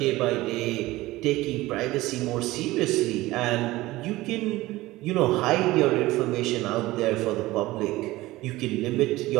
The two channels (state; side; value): quieter; left; 18.4 dB